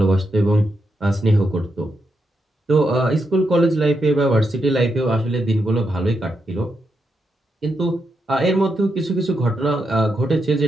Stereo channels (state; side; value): normal; both; correlation 0.83